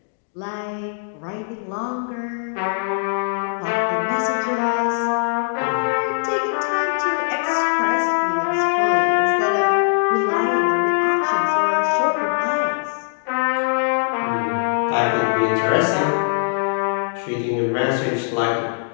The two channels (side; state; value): right; silent; digital silence